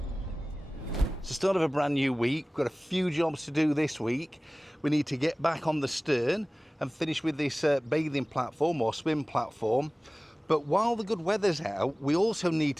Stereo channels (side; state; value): both; normal; correlation 0.98